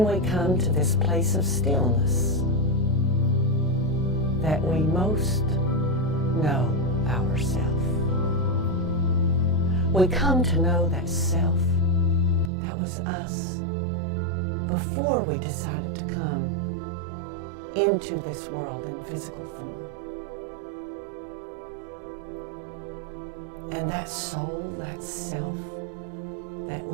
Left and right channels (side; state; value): left; drops out; at 12.5 s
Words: we come to this place of stillness that we most know ourselves. We come to know that self, that was us, before we decided to come into this world in physical form. And that soul, that self that